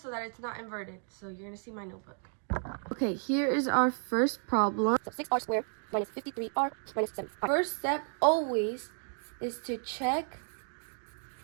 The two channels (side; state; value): left; silent; 56 dB below the other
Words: that it's not inverted. So you're going to see my notebook. Okay, here is our first problem. So 6r squared minus 53r minus 7. First step always is to check